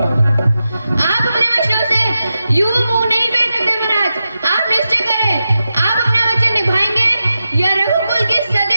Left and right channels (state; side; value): inverted; both; correlation -0.90